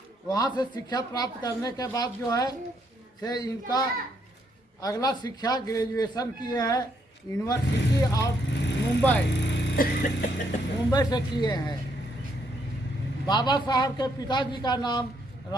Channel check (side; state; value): both; normal; correlation 0.73